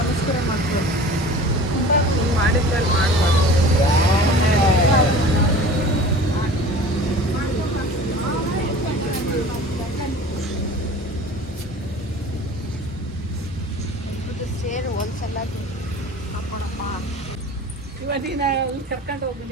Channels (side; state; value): both; normal; correlation 0.41